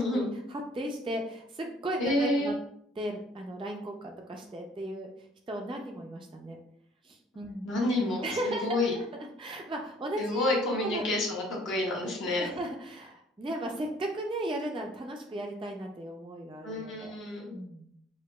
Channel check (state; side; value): normal; both; correlation 0.57